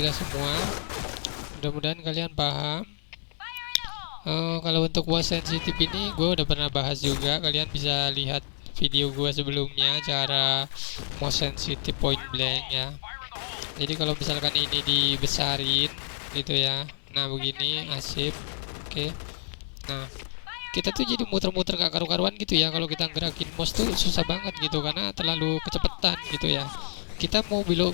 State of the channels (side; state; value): right; silent; 59 dB below the other